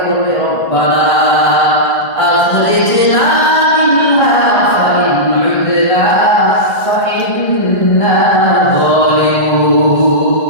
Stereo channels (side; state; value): right; late; 1.5 ms